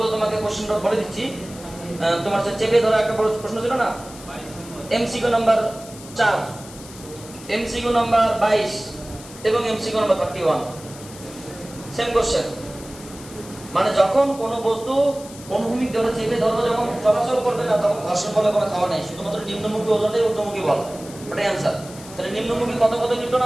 তোমাকে কোশ্চেনটা বলে দিচ্ছি, তোমার কাছে চেপে ধরা একটা প্রশ্ন ছিল না, এমসিকিউ নাম্বার 4, এমসিকিউ নাম্বার 22 এবং এমসিকিউ নাম্বার 31, সেম কোশ্চেন। মানে যখন কোনো বস্তু অনুভূমিক ধরে চেপে ধরো, যখন চলাচল করবে না তখন ঘর্ষণ বলে কোনো খাওয়া নাই, শুধুমাত্র নিম্নমুখী ওজনটাই ঊর্ধ্বমুখী বল, ওটাই आंसर। তাহলে নিম্নমুখী কত কত নিউটন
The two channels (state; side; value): noise; left; hiss, 17 dB below the sound